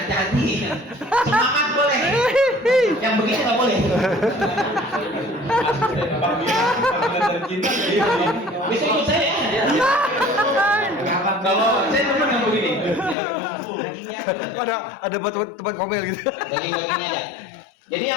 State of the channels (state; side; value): drops out; right; at 13.2 s